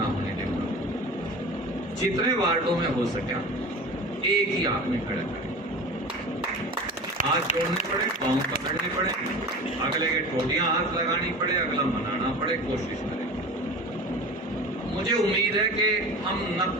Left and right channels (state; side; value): normal; both; correlation 0.35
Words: होने देंगे। जितने वार्डों में हो सके एक ही आदमी खड़ा करें, हाथ जोड़ने पड़े, पांव पकड़ने पड़े, अगले के टोटियां हाथ लगानी पड़े, अगला मनाना पड़े, कोशिश करें। मुझे उम्मीद है कि हम